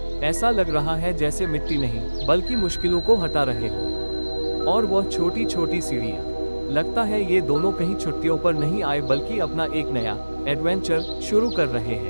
ऐसा लग रहा है जैसे मिट्टी नहीं, बल्कि मुश्किलों को हटा रहे हो। और वह छोटी छोटी सीढ़ियाँ। लगता है ये दोनों कहीं छुट्टियों पर नहीं आए बल्कि अपना एक नया एडवेंचर शुरू कर रहे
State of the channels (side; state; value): both; inverted; correlation -1.00